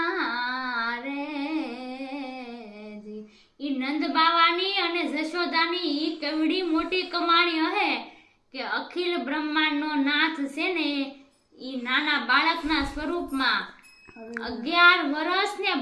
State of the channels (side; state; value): both; identical; correlation 1.00